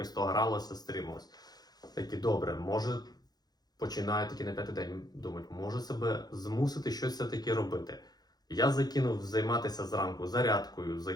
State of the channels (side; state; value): right; late; 0.19 ms